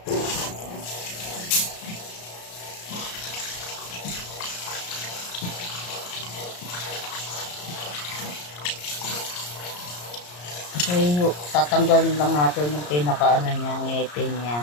So tatanggalin lang natin yung pinakaano niya, ngipin niya.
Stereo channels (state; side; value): late; right; 34 ms